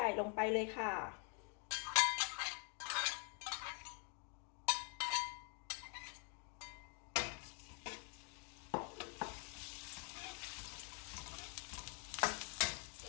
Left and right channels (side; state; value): right; quieter; 39.0 dB